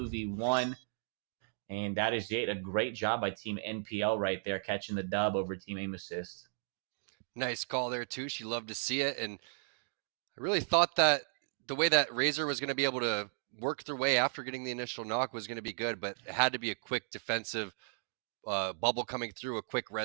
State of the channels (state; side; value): silent; left; digital silence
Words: And that is it. A great job by Team NPL right there, catching the dub over Team Aim Assist. Nice call there, Touche. You love to see it. And I really thought that the way that Razor was going to be able to work their way after getting the initial knock was going to be good, but it had to be a quick defensive bubble coming through, a quick